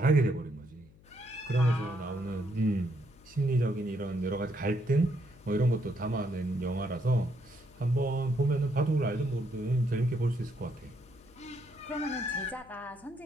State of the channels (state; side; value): noise; left; hum, 25 dB below the sound